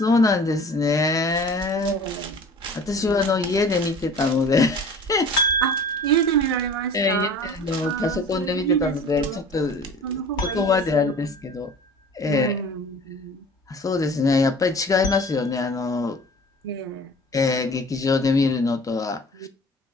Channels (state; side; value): normal; both; correlation 0.44